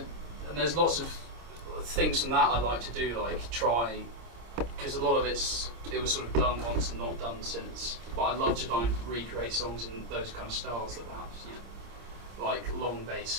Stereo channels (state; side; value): late; left; 26 ms